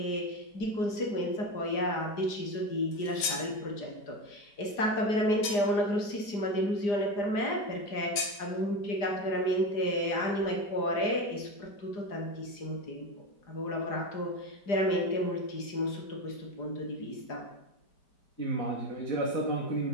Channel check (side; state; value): right; late; 4.9 ms